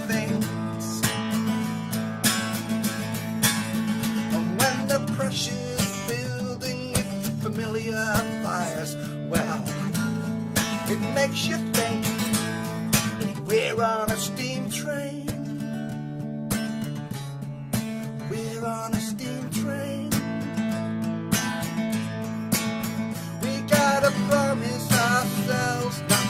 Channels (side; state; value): both; identical; correlation 1.00